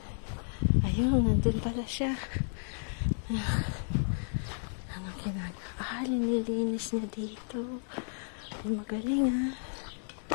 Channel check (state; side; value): silent; right; digital silence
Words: Ayun, nandun pala siya. Ano ginagawa? Nililinis niya dito. Ay, magaling